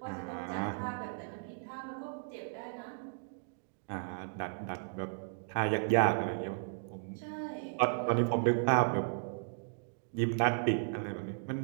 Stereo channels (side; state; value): left; silent; digital silence